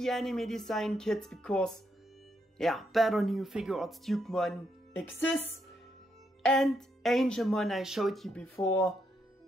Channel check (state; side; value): normal; both; correlation 0.78